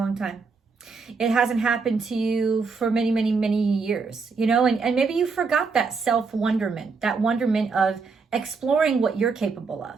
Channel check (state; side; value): quieter; left; 4.8 dB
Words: time. It hasn't happened to you for many, many, many years, you know, and maybe you forgot that self-wonderment, that wonderment of exploring what you're capable